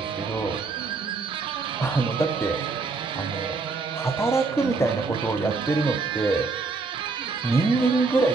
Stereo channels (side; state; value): left; quieter; 4.2 dB